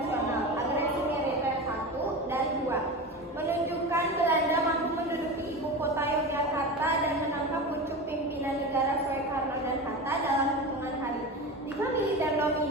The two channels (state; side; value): normal; both; correlation 0.26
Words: Agresi militer 1 dan 2 menunjukkan Belanda mampu menduduki ibu kota Yogyakarta dan menangkap pucuk pimpinan negara Soekarno dan Hatta dalam hitungan hari. Jika militer